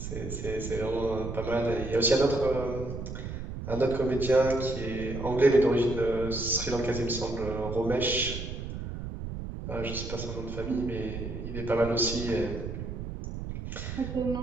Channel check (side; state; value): right; noise; rumble, 7 dB below the sound